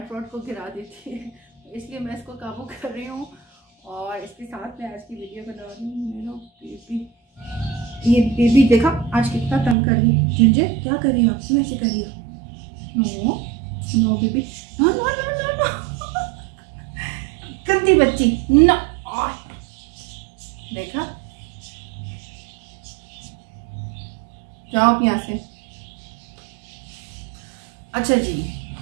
को गिरा देती है, तो इसलिए मैं इसको काबू कर रही हूँ। और इसके साथ मैं आज की वीडियो बना रही हूँ। मेरा बेबी, ये बेबी देखा आज कितना तंग कर रही है। जिंजर क्या कर रही हो आप, ऐसे कर रही हो? No no baby, no no no no no, गंदी बच्ची, नो। देखा, जाओ यहाँ से। अच्छा जी,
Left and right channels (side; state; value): left; drops out; at 9.8 s